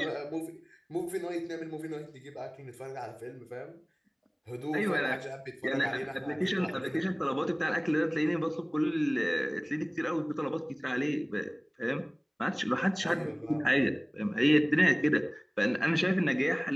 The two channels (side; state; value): both; identical; correlation 1.00